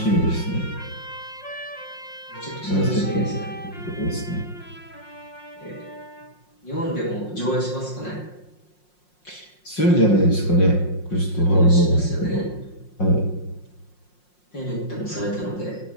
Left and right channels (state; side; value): late; right; 5.6 ms